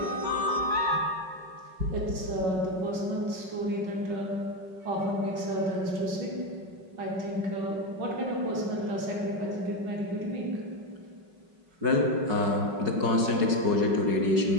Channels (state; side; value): late; left; 5.4 ms